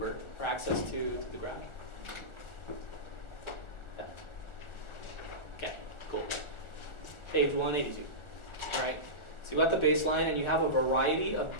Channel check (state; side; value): late; right; 1.4 ms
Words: or access to the graph? Yeah. Okay, cool. Page 182. All right. So you've got the baseline, and you have a variety of